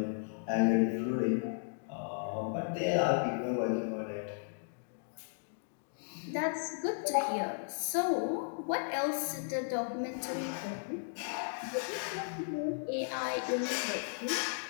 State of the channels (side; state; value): right; silent; digital silence